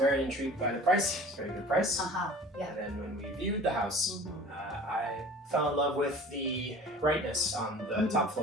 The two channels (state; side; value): normal; both; correlation 0.43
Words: intrigued by the price. It's a very good price. Yeah. And then when we viewed the house, I fell in love with the brightness on the top